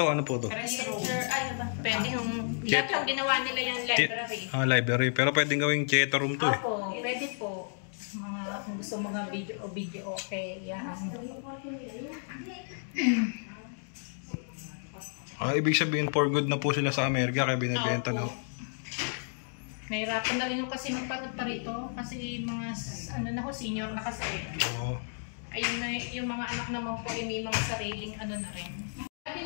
ano po to? Restroom. Ay, ba? Pwede yung, lahat yung ginawa nila yung library. Library. Pero pwedeng gawing theater room to eh. Opo, pwede po. Mga, kung gusto mga video okay. Yan. Ibig sabihin for good na po sila sa Amerika kaya binibenta na. Nahirapan na rin yung kasi magpanood pa rito. Kasi mga, ano na ho, senior na kasi. Oo. Ayun na, yung mga anak naman po, may mga sariling ano na rin. Ate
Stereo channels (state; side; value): silent; right; digital silence